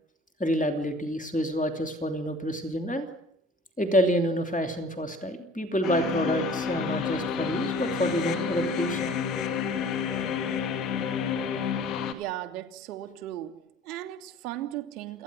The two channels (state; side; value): normal; both; correlation 0.48